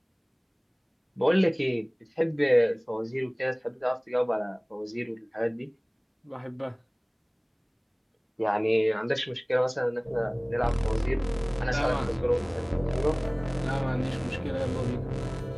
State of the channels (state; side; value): identical; both; correlation 1.00